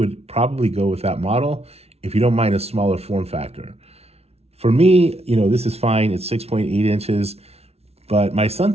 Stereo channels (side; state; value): left; late; 0.30 ms